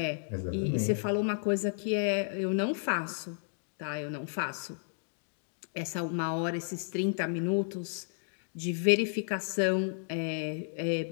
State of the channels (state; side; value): silent; right; digital silence